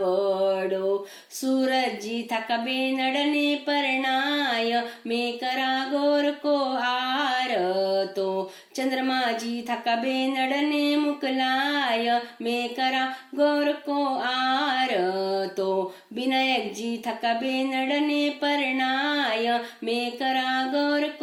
सूरजी थका बेनड़ने परणाय मैं करा गौर को आरतो चंद्रमा जी थका बेनड़ने मुकलाय मैं करा गौर को आरतो विनायक जी थका बेनड़ने परणाय मैं करा गौर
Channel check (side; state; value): both; identical; correlation 1.00